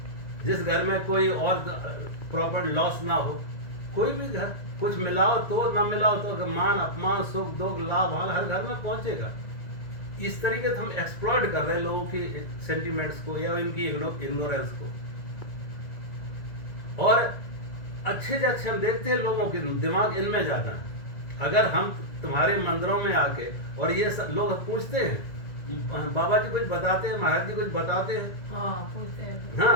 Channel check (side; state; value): right; late; 2.0 ms